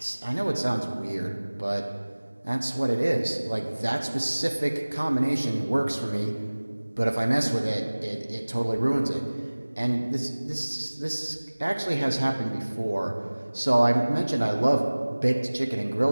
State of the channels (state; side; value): inverted; both; correlation -1.00